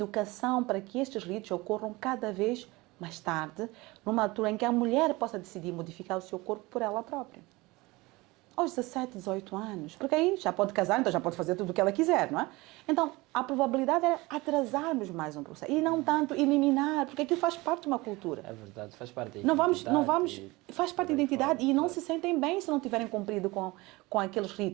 para que estes ritos ocorram cada vez mais tarde, numa altura em que a mulher possa decidir modificar o seu corpo por ela própria. Aos 17, 18 anos, porque aí já pode casar, então já pode fazer tudo o que ela quiser, não é? Então, a probabilidade era atrasarmos mais um processo e não tanto eliminar, porque aquilo faz parte de uma cultura. É verdade, faz parte da identidade. Faz parte da identidade e não se sentem bem se não tiverem cumprido com aqueles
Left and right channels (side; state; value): left; quieter; 22.2 dB